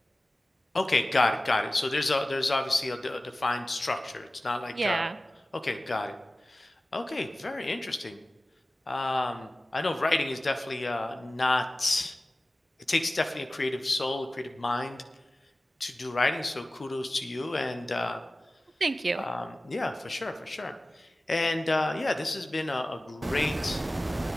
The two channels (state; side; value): normal; both; correlation 0.96